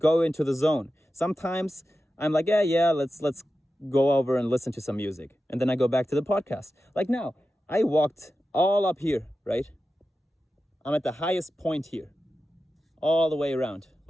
into the zone. Sometimes I'm like, yeah, let's go over and listen to some music. And then I go back to the podcast. Like now, I walked all up here, right? I'm at the highest point here, all the way around.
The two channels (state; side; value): normal; both; correlation 0.92